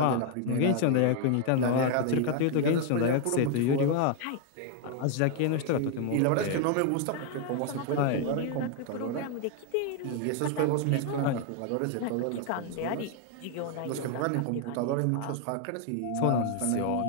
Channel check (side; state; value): both; different; correlation 0.00